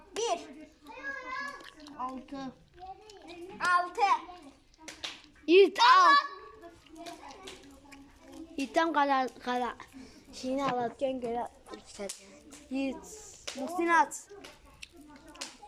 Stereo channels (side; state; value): both; identical; correlation 1.00